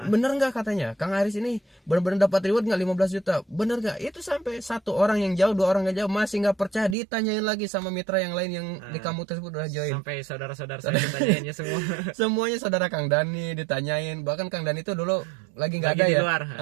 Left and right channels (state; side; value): drops out; left; at 7.0 s